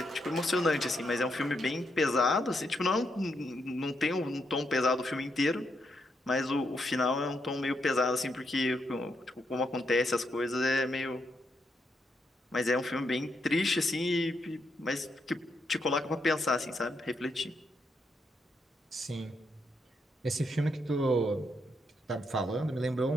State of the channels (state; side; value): normal; both; correlation 0.80